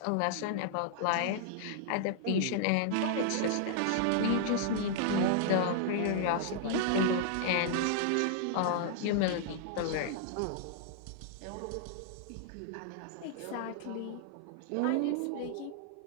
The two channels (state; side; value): different; both; correlation -0.01